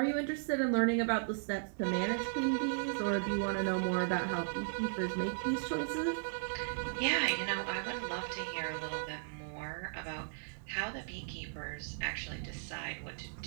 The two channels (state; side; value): silent; left; digital silence